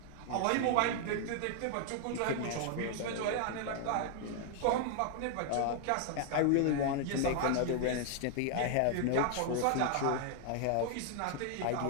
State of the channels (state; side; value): different; both; correlation 0.00